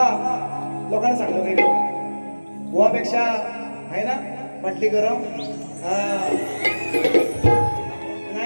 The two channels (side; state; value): both; inverted; correlation -1.00